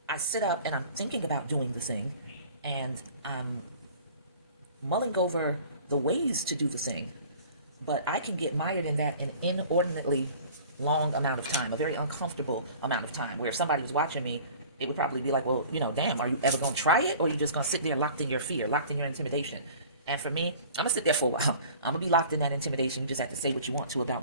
I sit up and I'm thinking about doing the thing, and I'm mulling over the ways to do the thing, but I can get mired in that an inordinately long amount of time, a very uncomfortable amount of time, where if somebody was watching me, it would probably be like, well, damn, are you ever going to try it? Or are you just going to sit there locked in your fear, locked in your intimidation? And for me, I'm going to sit there for a while. I'm going to be locked in that intimidation. You just have to say what you want to about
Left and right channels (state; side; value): inverted; both; correlation -0.46